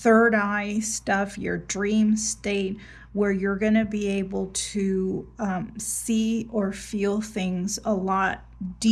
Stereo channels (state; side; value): identical; both; correlation 1.00